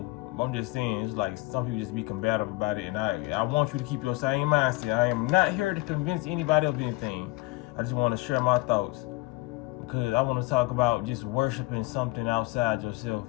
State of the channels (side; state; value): right; quieter; 22.2 dB